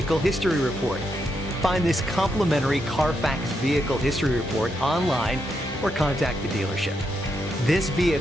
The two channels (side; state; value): both; normal; correlation 0.81